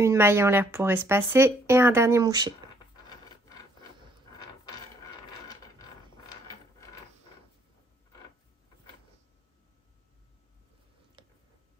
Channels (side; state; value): both; normal; correlation 0.65